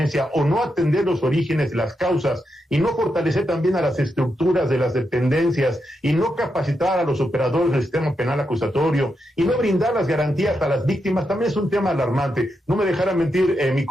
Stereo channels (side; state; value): both; normal; correlation 0.84